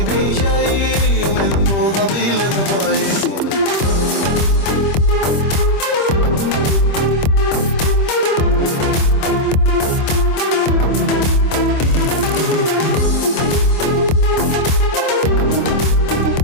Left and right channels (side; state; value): right; late; 25 ms